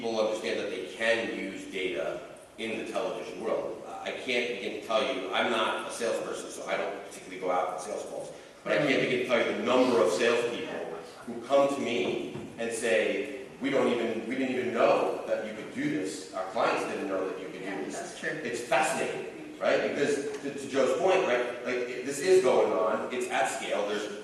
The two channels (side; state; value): both; identical; correlation 1.00